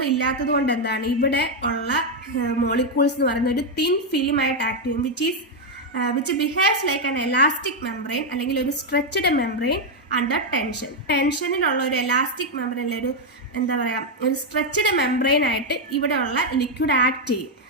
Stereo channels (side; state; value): both; normal; correlation 0.02